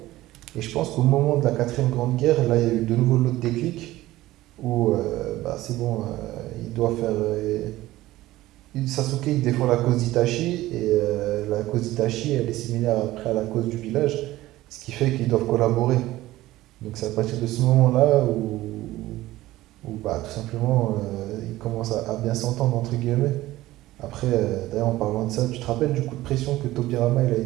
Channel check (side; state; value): left; quieter; 16.6 dB